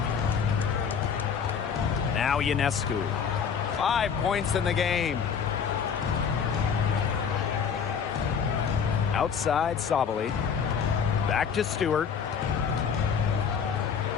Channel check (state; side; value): quieter; right; 6.8 dB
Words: Now Ionescu. 5 points in the game. Outside Sabali. Back to Stewart.